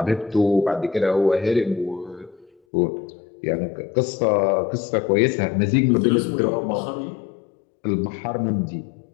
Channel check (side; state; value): right; drops out; at 2.5 s